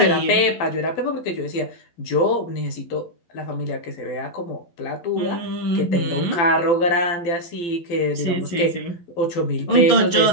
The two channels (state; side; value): late; right; 12 ms